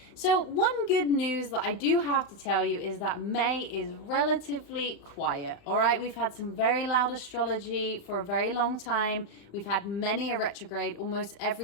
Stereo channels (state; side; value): late; right; 35 ms